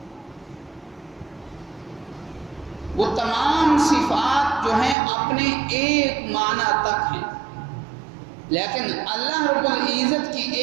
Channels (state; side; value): drops out; left; at 5.0 s